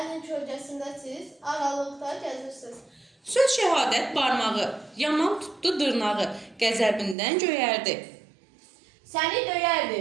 kölgəsində siz aralıqda gəzirsiniz. Söz şəhadət barmağı, yaman tutdu dırnağı, qəzəbindən göyərdi. Səni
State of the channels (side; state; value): left; drops out; at 7.2 s